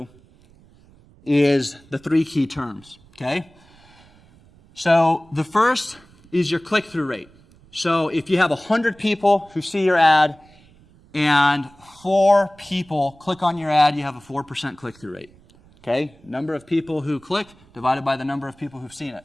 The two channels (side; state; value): right; noise; rumble, 28 dB below the sound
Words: is the 3 key terms, okay? So the first is your click-through rate. So if you have 100 people who see your ad and 4 people click on your ad, you have a 4% click-through rate, okay? Number of people who click divided by the number of people who've seen it.